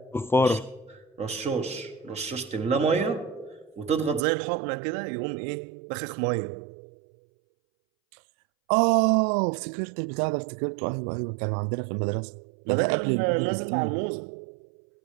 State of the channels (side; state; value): left; drops out; at 4.2 s